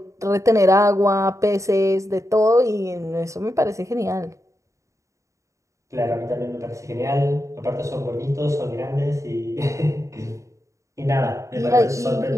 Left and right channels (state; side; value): late; left; 0.15 ms